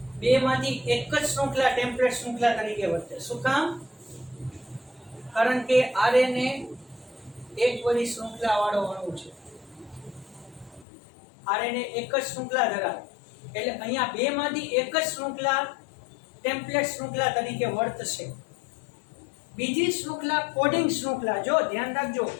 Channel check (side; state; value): right; drops out; at 10.9 s